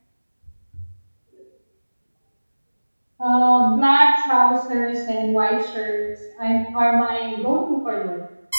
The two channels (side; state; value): both; inverted; correlation -1.00